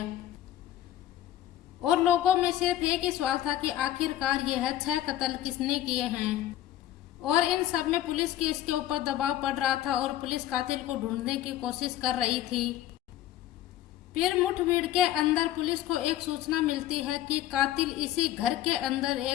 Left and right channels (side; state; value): right; quieter; 12.9 dB